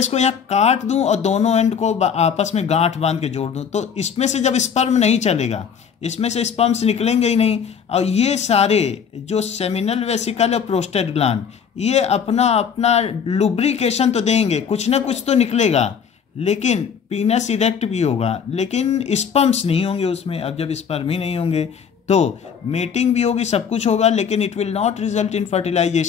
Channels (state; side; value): quieter; right; 7.1 dB